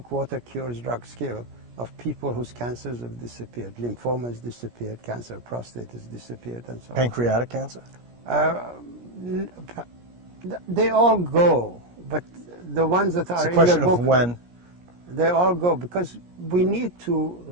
Water Cures Drugs Kill of people whose cancers have disappeared. Lymphoma has disappeared, cancer of prostate has disappeared, and so on. Pancreatic cancer? They all go, but the ones that are in the book... It's a question of when. They all go, because we need to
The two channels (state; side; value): late; left; 17 ms